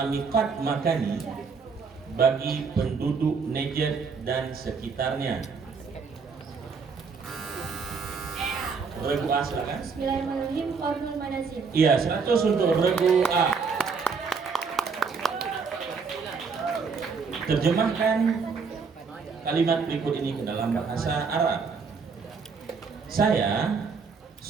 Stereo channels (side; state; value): left; quieter; 5.3 dB